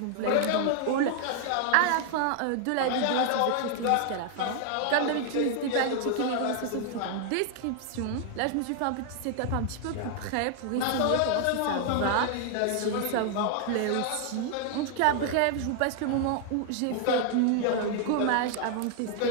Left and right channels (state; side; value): different; both; correlation 0.00